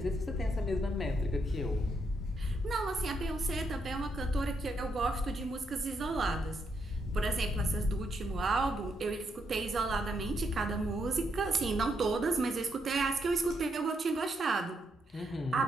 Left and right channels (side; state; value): both; normal; correlation 0.78